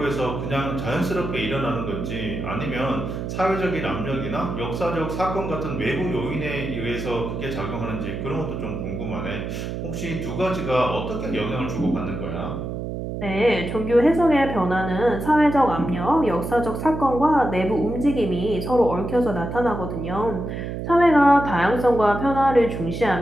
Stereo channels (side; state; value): right; noise; hum, 5 dB below the sound